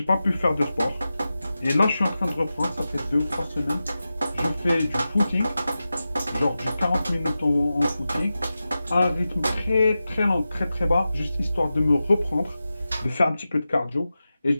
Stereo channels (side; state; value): both; inverted; correlation -0.93